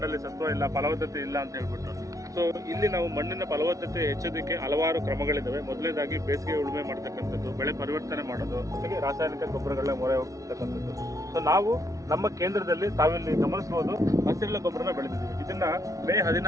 ಸತ್ವ ಇಲ್ಲ, ಫಲವತ್ತತೆ ಇಲ್ಲ ಅಂತ ಹೇಳ್ಬಿಟ್ಟು. ಸೊ ಇಲ್ಲಿ ನಾವು ಮಣ್ಣಿನ ಫಲವತ್ತತೆ ಹೆಚ್ಚೋದಕ್ಕೆ ಹಲವಾರು ಕ್ರಮಗಳಿದ್ದಾವೆ. ಮೊದಲನೇದಾಗಿ ಬೇಸಿಗೆ ಉಳುಮೆ ಮಾಡ್ತಕ್ಕಂಥದ್ದು, ಬೆಳೆ ಪರಿವರ್ತನೆ ಮಾಡೋದು, ಜೊತೆಗೆ ರಾಸಾಯನಿಕ ಗೊಬ್ಬರಗಳನ್ನ ಮೊರೆ ಹೋಗ್ತಕ್ಕಂಥದ್ದು. ಸೊ ನಾವು ನಮ್ಮ ಕೇಂದ್ರದಲ್ಲಿ ತಾವಿಲ್ಲಿ ಗಮನಿಸಬಹುದು, ಹಸಿರೆಲೆ ಗೊಬ್ಬರನ ಬೆಳೆದಿದ್ದೀವಿ. ಇದನ್ನ ಮೇ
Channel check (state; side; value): late; left; 0.16 ms